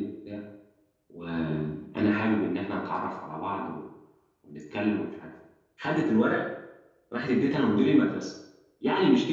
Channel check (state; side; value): identical; both; correlation 1.00